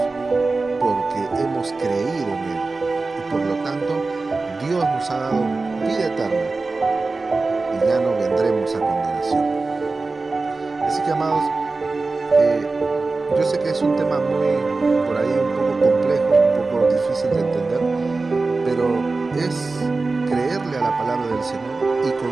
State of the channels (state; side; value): quieter; left; 3.7 dB